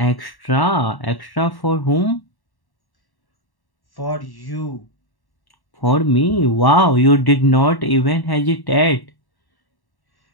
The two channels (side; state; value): right; late; 1.1 ms